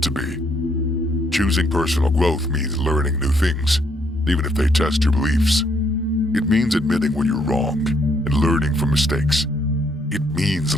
to be? Choosing personal growth means learning new things, even if they test your beliefs. It means admitting when you're wrong and learning from mistakes. It means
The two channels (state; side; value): normal; both; correlation 0.71